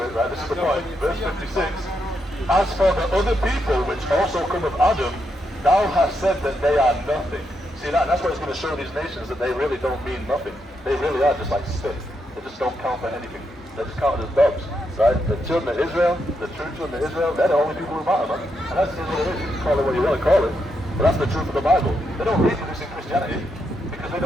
it, right? This is the point. Verse 56. As for the other people which also come of Adam, thou hast said that they are nothing. See that? And that's what it's going to show these nations, that they really don't mean nothing. They really are just like spit. They just don't count for anything. They're just counted as dogs, right? The children of Israel, the true children of Israel, they're the only people who matter, man. And that's what it is. You can call it what you want to call it. But that's the truth of the Bible. They don't reproduce in Christianity because they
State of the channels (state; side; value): normal; both; correlation 0.81